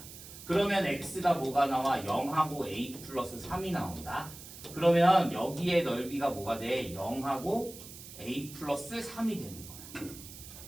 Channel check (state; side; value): noise; right; hiss, 15 dB below the sound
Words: 그러면 x가 뭐가 나와? 0하고 a 플러스 3이 나온다. 그러면 여기에 넓이가 뭐가 돼? 0하고 a 플러스 3이 되는 거야.